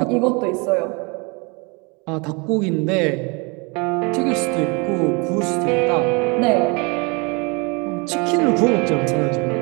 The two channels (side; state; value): left; quieter; 30.0 dB